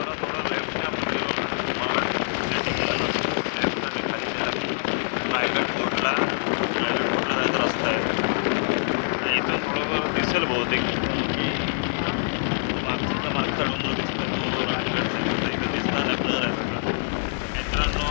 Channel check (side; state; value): right; silent; digital silence